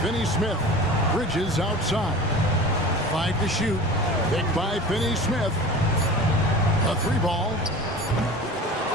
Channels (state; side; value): normal; both; correlation 0.37